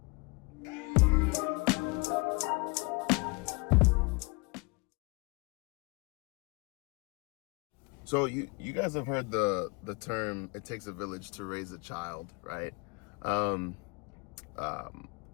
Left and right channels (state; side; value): quieter; right; 28.4 dB